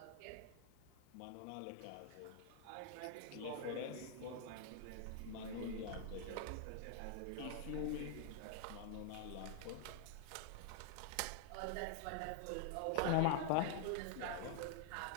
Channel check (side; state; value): both; different; correlation 0.00